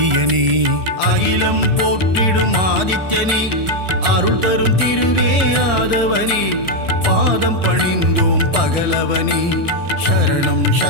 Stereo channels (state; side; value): late; left; 1.4 ms